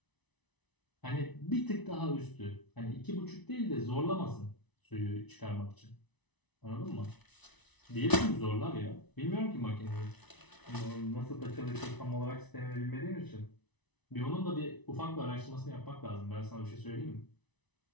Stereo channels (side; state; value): right; late; 1.0 ms